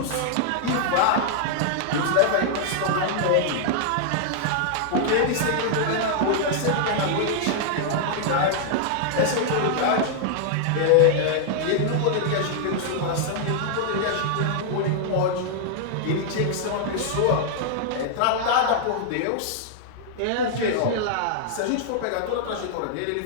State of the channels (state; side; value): different; both; correlation 0.00